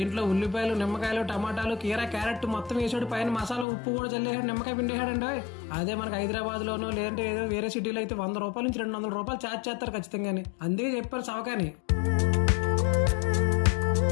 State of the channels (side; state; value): right; drops out; at 3.7 s